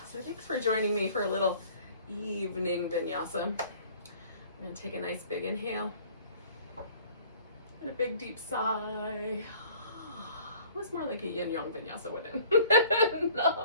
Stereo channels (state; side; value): inverted; both; correlation -0.52